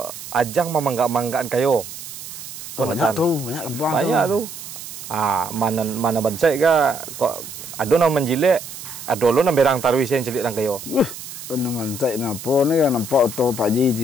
ajang memanggak-manggakan kayo. Banyak tuh, banyak kembang banyak tuh. Mana bansai ka kok ado na menjilek, ado lo na berang tarwi sen celik lang kayo. Naman saya napa ni kan nampak tu Pak Ji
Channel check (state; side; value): noise; right; hiss, 12 dB below the sound